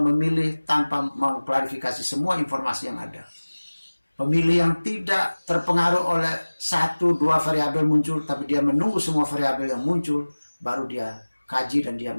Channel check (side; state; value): both; inverted; correlation -1.00